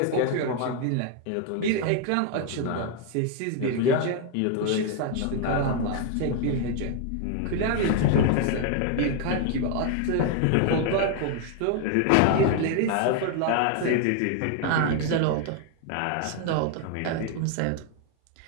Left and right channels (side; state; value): both; different; correlation 0.01